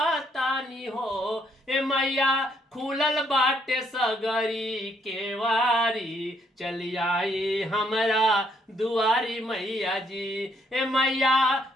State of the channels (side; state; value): both; normal; correlation 0.70